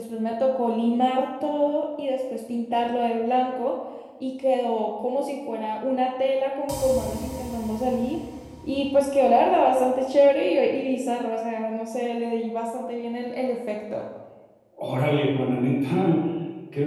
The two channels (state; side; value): identical; both; correlation 1.00